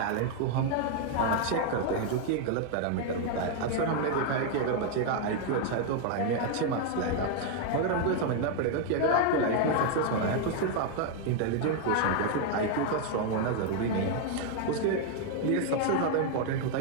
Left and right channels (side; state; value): both; different; correlation 0.00